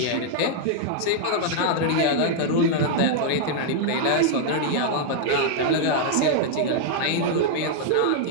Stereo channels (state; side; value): different; both; correlation -0.01